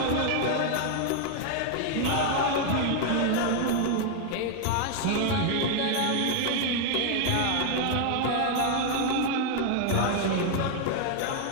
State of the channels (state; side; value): different; both; correlation 0.00